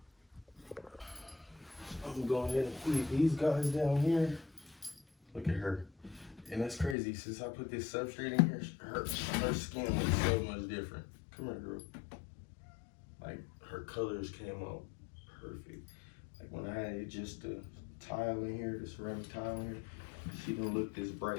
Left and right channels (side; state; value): right; drops out; at 7.0 s